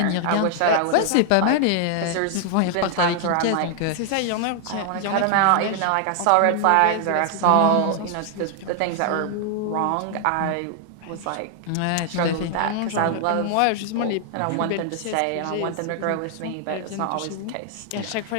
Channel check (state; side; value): different; both; correlation 0.00